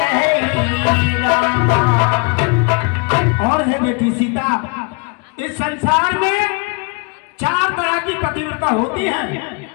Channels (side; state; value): right; quieter; 32.5 dB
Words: रामा। और है बेटी सीता, इस संसार में 4 तरह की पतिव्रता होती है।